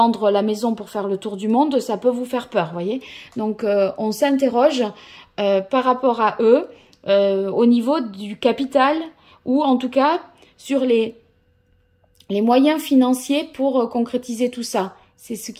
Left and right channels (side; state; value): both; identical; correlation 1.00